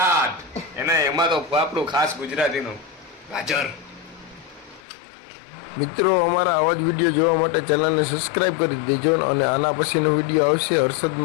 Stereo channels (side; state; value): right; drops out; at 4.8 s